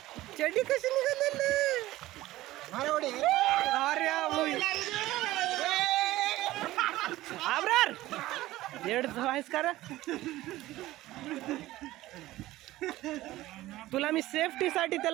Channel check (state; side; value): quieter; left; 16.6 dB